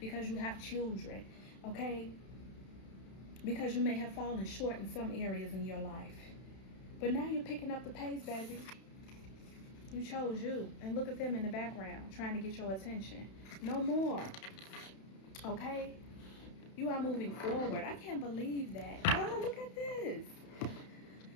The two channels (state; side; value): late; right; 31 ms